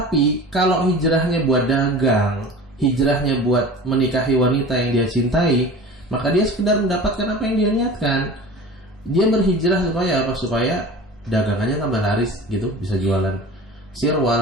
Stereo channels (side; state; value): both; normal; correlation 0.38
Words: kalau hijrahnya buat dagang, hijrahnya buat menikahi wanita yang dia cintai, maka dia sekedar mendapatkan apa yang dia niatkan. Dia berhijrah supaya apa? Supaya dagangannya tambah laris gitu, bisa jualan